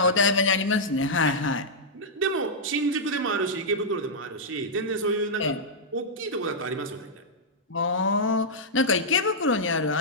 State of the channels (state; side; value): normal; both; correlation -0.09